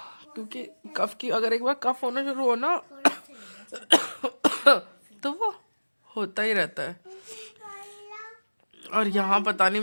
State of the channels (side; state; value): both; inverted; correlation -1.00